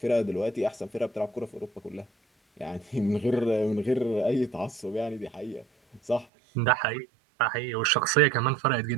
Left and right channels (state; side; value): drops out; left; at 6.2 s